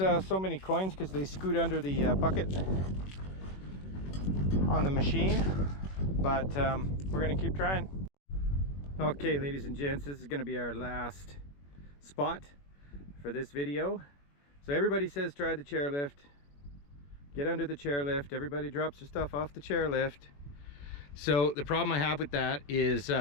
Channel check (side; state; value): right; late; 21 ms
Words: many coins because they scoot under the bucket on the machine, but we're gonna keep trying. Okay, ladies and gents, this is gonna be our last spot for this video. So everybody says try the chairlift, get under the chairlift, everybody drops their stuff off the chairlift. So the problem I have with that is